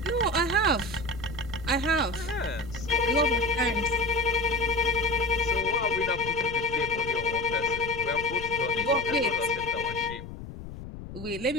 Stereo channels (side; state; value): left; noise; rumble, 12 dB below the sound